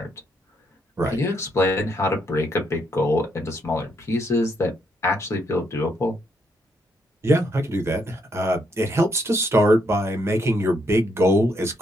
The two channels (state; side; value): normal; both; correlation 0.75